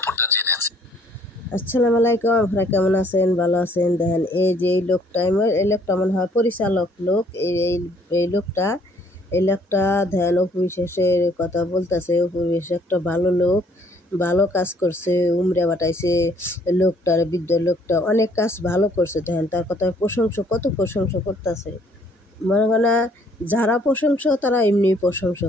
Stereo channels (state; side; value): normal; both; correlation 0.62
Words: জেনেছে। আসসালামু আলাইকুম, আপনারা কেমন আছেন? ভালো আছেন? দেখেন এই যে এই লোকটা মনে হয় পরিচালক লোক। এই লোকটা ধ্যান অপবিশ্বাসের কথা বলতেছে। অপবিশ্বাস একটা ভালো লোক, ভালো কাজ করছে, উমরা বাটাইছে লোকটার, বৃদ্ধ লোকটা অনেক কাজ ভালো করছে। দেখেন তার কথা কত প্রশংসা করতেছে। মনে হয় না যারা প্রশংসা তারা এমনি প্রশংসা